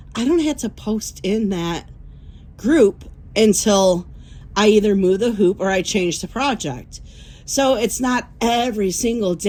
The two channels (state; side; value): identical; both; correlation 1.00